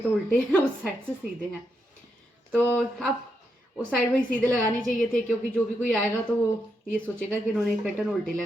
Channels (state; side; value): normal; both; correlation 0.82